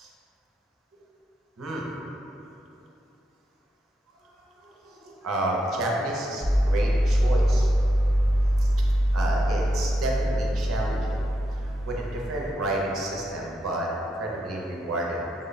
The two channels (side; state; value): both; normal; correlation 0.84